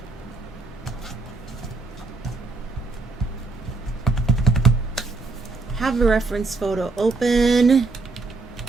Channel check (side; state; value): left; quieter; 3.7 dB